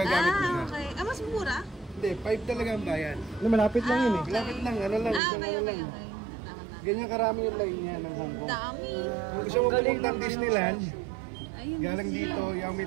mo siya. Okay. Mas mura? Hindi, 5 talaga ang bayan. Malapit lang yun eh. Malapit lang, ano lang, isang okay, ano okay. lang. Ganyan karami yung line niya ng Hong Kong. Dami. Kung gusto mo pumunta ng Disneyland, Ayun, galing dito, Yao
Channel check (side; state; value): left; drops out; at 5.2 s